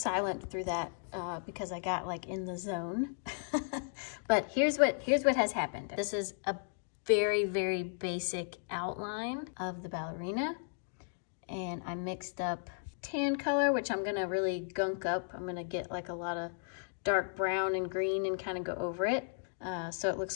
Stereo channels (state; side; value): silent; right; digital silence